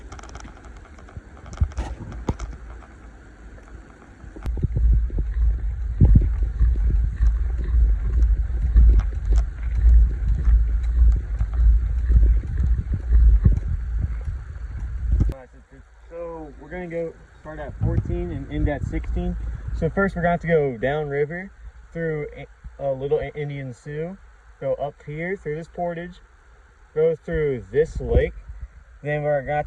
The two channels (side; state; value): both; identical; correlation 1.00